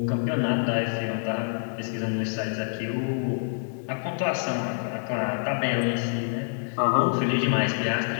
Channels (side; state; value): right; silent; digital silence